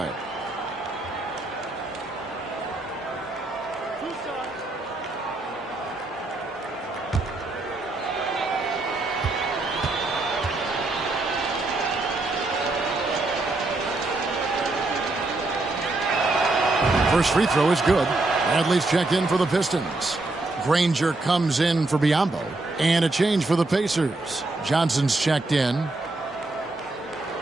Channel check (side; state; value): left; quieter; 3.0 dB